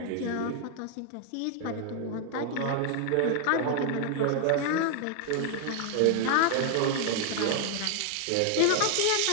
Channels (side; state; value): both; different; correlation 0.00